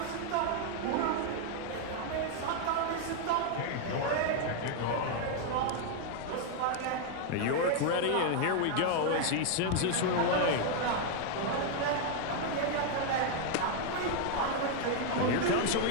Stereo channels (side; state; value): both; different; correlation 0.00